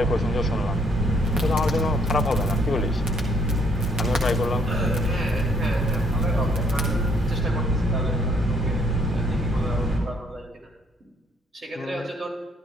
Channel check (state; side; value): normal; both; correlation 0.66